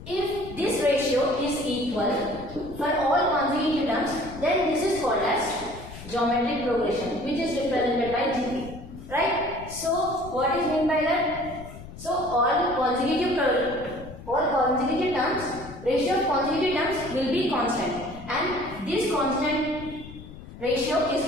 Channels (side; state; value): left; noise; rumble, 15 dB below the sound